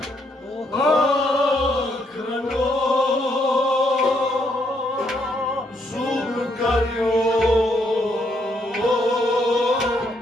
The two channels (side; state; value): both; normal; correlation 0.74